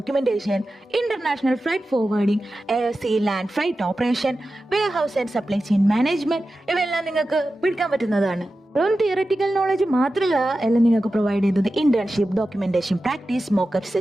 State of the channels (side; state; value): both; normal; correlation 0.93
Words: international freight forwarding, air sea land freight operation, warehouse and supply chain management ഇവയെല്ലാം നിങ്ങൾക്ക് പഠിക്കാൻ പറ്റുന്നതാണ്. വെറും തിയററ്റിക്കൽ നോളജ് മാത്രമല്ല എല്ലാം നിങ്ങൾക്ക് പ്രൊവൈഡ് ചെയ്തത്. Internship, documentation, practice, mockup